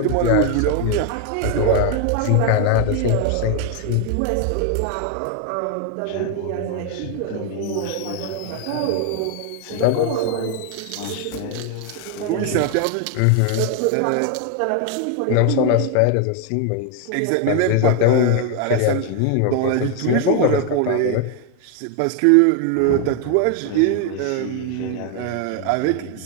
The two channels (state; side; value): different; both; correlation 0.01